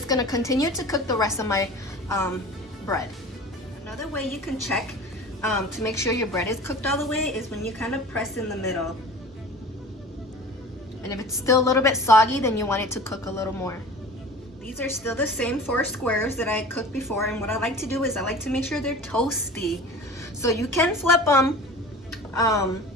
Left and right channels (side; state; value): both; normal; correlation 0.39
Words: gonna continue to cook the rest of my bread. Another way you can check to make sure your bread is cooked all the way is when you kind of press in the middle. And if it's still a little bit soggy, then you want it to cook a little more. These are still the same 4 squares that I cooked before, and what I like to do is I like to make sure they're toasty. So you can flip them